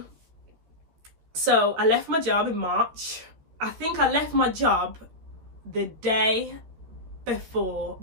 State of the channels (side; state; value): left; late; 14 ms